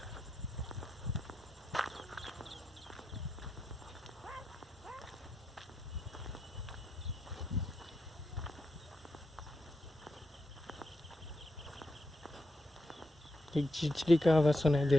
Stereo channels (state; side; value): normal; both; correlation 0.85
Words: एक चिड़चिड़ी का आवाज़ सुनाई दे